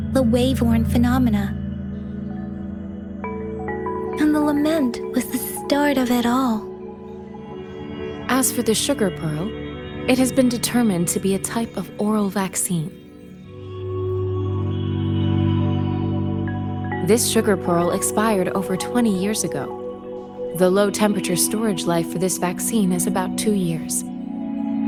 the wave-worn phenomena. And the lament was the start of it all. As for the sugar pearl, it has been determined to be a type of oral vaccine. This sugar pearl expired over 20 years ago. The low-temperature storage life for this vaccine is about 2 years.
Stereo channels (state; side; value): identical; both; correlation 1.00